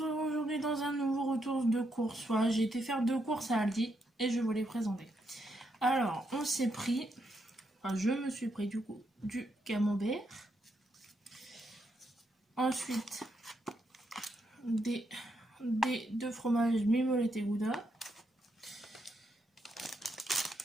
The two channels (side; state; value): both; normal; correlation 0.79